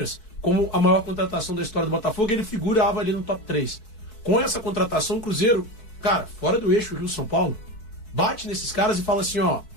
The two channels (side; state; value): right; late; 4.6 ms